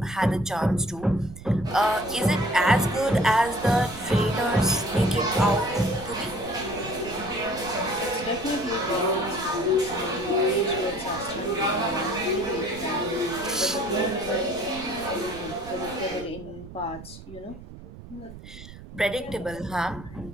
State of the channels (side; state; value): right; noise; rumble, 15 dB below the sound